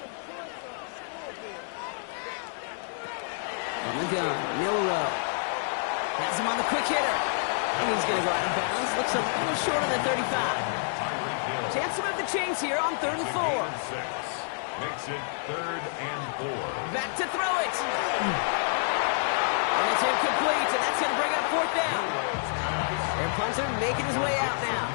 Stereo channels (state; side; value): silent; right; digital silence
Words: On the gun, Milroe. Has him on the quick hitter. And he's going to go out of bounds. Looks a little short of the 35. Chance to move the chains here on 3rd and 4. Makes it 3rd and 4. Back to throw it. And it's incomplete, and that's going to bring up 4th down. Their punter making his way out now.